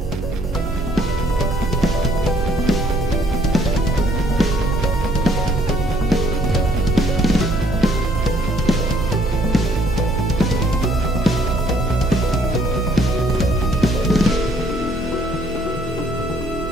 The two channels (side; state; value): both; normal; correlation 0.64